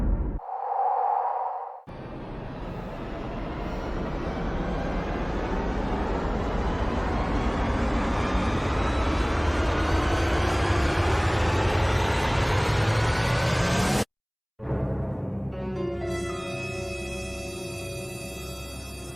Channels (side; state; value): both; identical; correlation 1.00